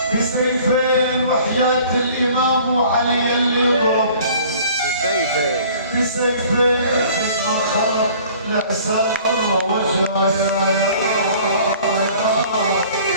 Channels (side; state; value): both; inverted; correlation -0.51